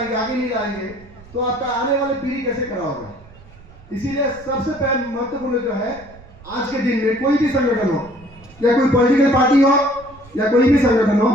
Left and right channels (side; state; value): right; noise; rumble, 22 dB below the sound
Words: आगे नहीं लाएंगे, तो आपका आने वाली पीढ़ी कैसे खड़ा होगा। इसीलिए सबसे पहले महत्वपूर्ण जो है, आज के दिन में कोई भी संगठन हो या कोई पॉलिटिकल पार्टी हो या कोई भी संगठन हो,